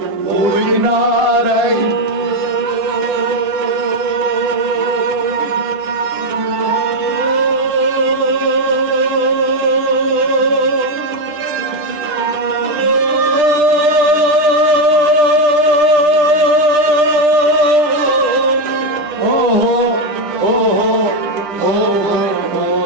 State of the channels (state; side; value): late; left; 10 ms